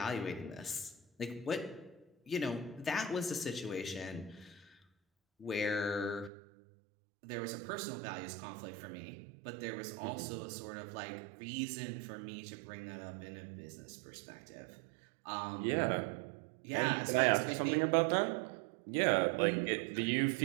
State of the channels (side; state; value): left; drops out; at 6.3 s